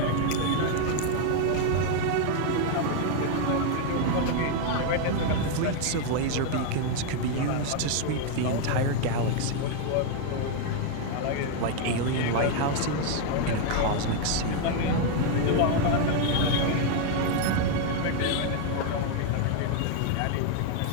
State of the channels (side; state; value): both; different; correlation 0.00